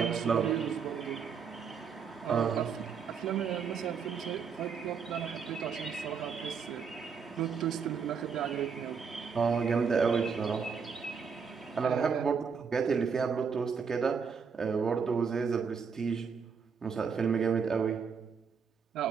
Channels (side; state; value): left; quieter; 6.1 dB